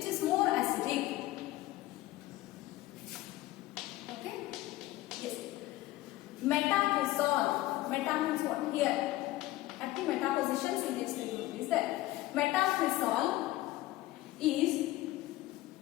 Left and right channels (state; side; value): quieter; right; 17.0 dB